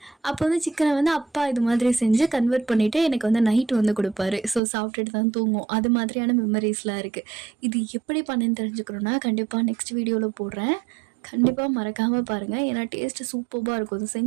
அப்போ வந்து சிக்கனை வந்து அப்பா இது மாதிரி செஞ்சு கன்வெர்ட் பண்ணிவிட்டு எனக்கு வந்து நைட்டு வந்து கொடுப்பாரு. ஸோ சாப்பிட்டுட்டு தான் தூங்கும். அது மாதிரியான மெமரிஸ்லாம் இருக்குது. இது எப்படி பண்ணேன்னு தெரிஞ்சுக்கணுன்னா கண்டிப்பாக நெக்ஸ்ட் வீடியோவில் போடுறேன். கண்டிப்பாக மறக்காமல் பாருங்கள். ஏன்னா டேஸ்ட்டு சூப்பராக இருக்கும். இது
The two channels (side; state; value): left; drops out; at 4.6 s